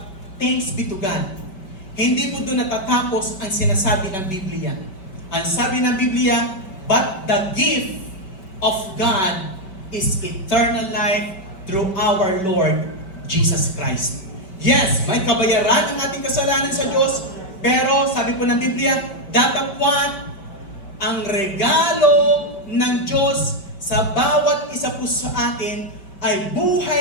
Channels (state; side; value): late; right; 5.2 ms